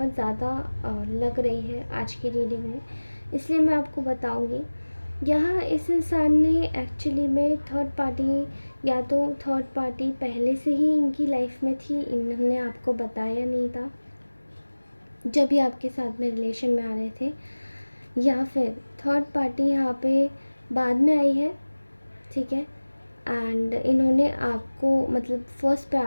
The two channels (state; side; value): inverted; both; correlation -1.00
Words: ज़्यादा लग रही है आज की रीडिंग में, इसलिए मैं आपको बताऊंगी। यहाँ इस इंसान ने एक्चुअली में थर्ड पार्टी, या तो थर्ड पार्टी पहले से ही इनकी लाइफ में थी, इन्होंने आपको बताया नहीं था जब ये आपके साथ में रिलेशन में आ रहे थे, या फिर थर्ड पार्टी यहाँ पे बाद में आई है। ठीक है, एंड इन्होंने आपको मतलब फर्स्ट